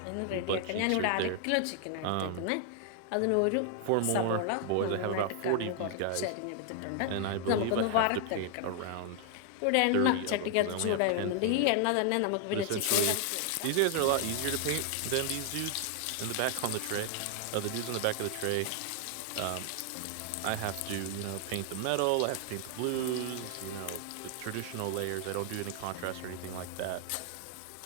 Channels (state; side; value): different; both; correlation 0.00